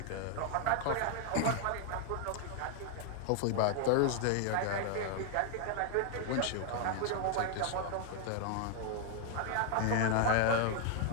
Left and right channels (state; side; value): different; both; correlation 0.00